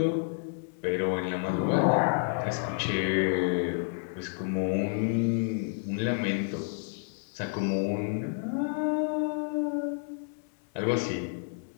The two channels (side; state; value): right; silent; digital silence